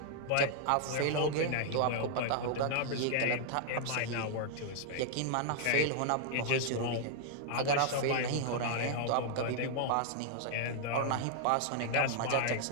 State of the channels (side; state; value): both; different; correlation -0.01